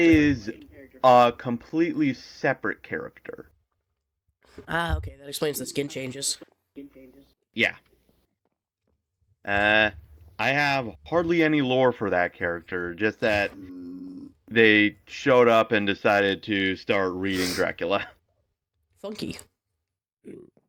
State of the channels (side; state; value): both; identical; correlation 1.00